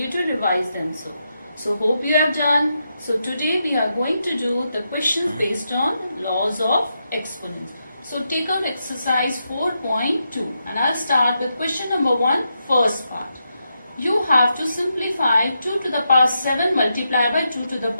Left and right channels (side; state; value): both; inverted; correlation -0.84